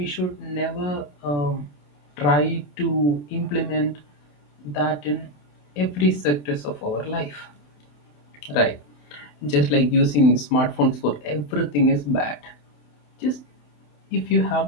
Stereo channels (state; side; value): late; right; 27 ms